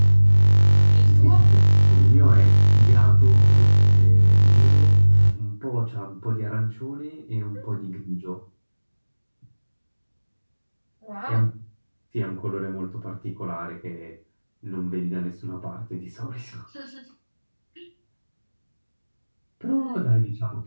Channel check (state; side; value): inverted; both; correlation -1.00